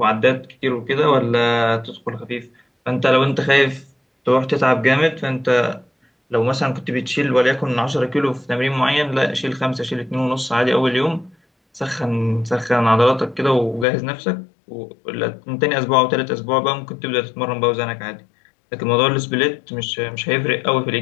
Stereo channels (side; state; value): right; drops out; at 13.9 s